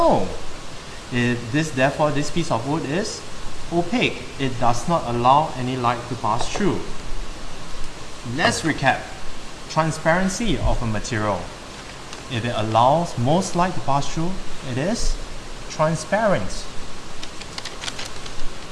Therefore, this piece of wood is opaque. It does not allow any light to pass through. let's recap. Transparency of a material. If it allows most light to pass through, it is transparent.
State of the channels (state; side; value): identical; both; correlation 1.00